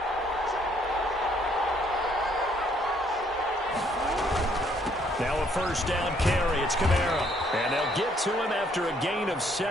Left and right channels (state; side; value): normal; both; correlation 0.66